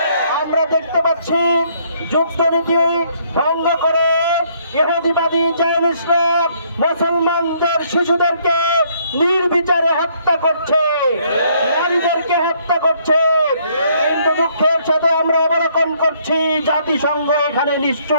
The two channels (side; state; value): both; inverted; correlation -0.66